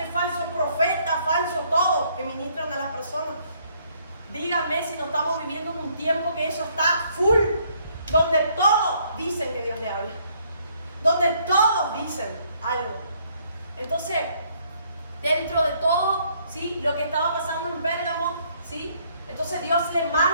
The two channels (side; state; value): both; inverted; correlation -0.67